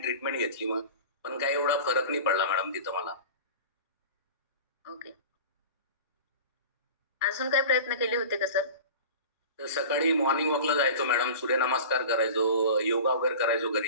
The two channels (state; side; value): inverted; both; correlation -0.36